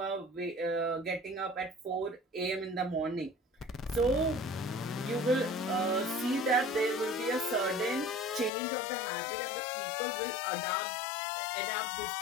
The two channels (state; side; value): drops out; right; at 8.5 s